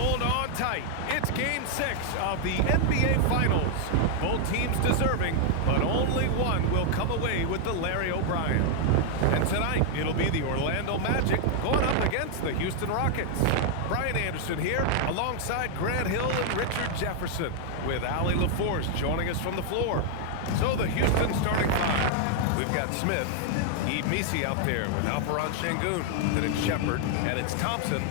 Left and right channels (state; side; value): different; both; correlation 0.00